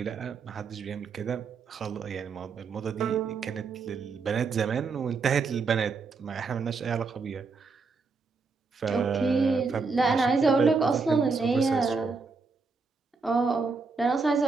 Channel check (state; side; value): quieter; left; 4.5 dB